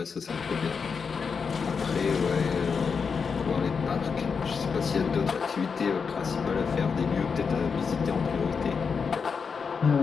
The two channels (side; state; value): right; quieter; 5.7 dB